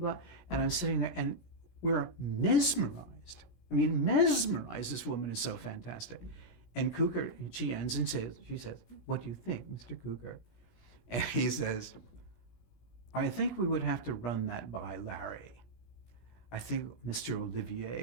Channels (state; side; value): late; right; 17 ms